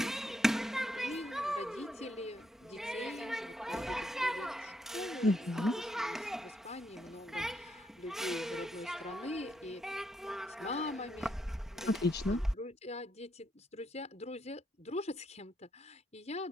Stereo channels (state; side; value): normal; both; correlation 0.77